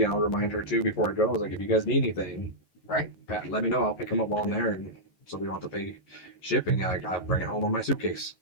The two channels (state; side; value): late; right; 11 ms